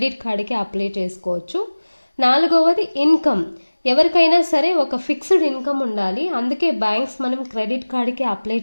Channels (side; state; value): both; inverted; correlation -1.00